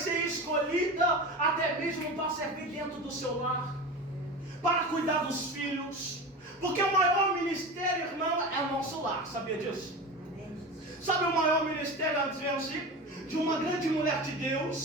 escolhida até mesmo para servir dentro do seu lar, para cuidar dos filhos. Porque o maior ministério, irmão, é o nosso lar. Sabia disso? Sabe o maior ministério, de uma grande mulher de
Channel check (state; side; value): normal; both; correlation 0.29